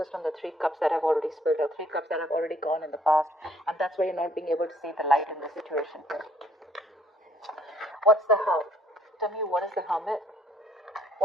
on the Three Cups that have already spilled, or Three Cups that have already gone in the past, and that's why you're not being able to see the light in the situation here. What's the Hermit? Tell me, what is the Hermit?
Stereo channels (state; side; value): normal; both; correlation 0.64